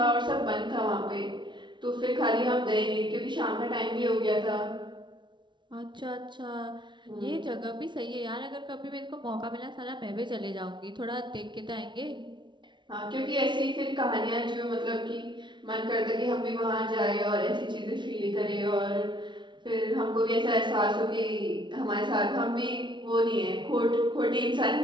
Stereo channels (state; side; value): late; left; 0.23 ms